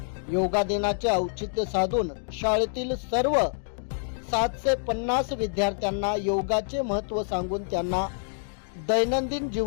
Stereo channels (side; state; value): right; silent; digital silence